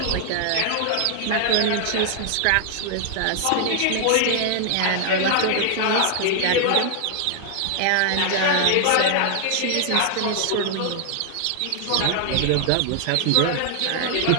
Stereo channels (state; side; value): different; both; correlation 0.00